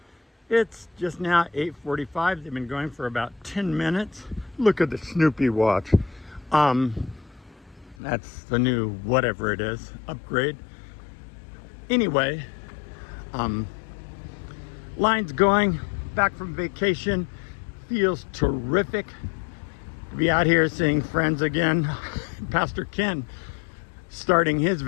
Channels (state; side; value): drops out; right; at 8.0 s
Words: It's just now 8:45. They've been going for about 10 minutes. Look at the Snoopy watch. That's the new whatever it is, upgrade. Anyway, line's going, back from vacation. Feels terrific to be out here seeing friends again. Pastor Ken starting his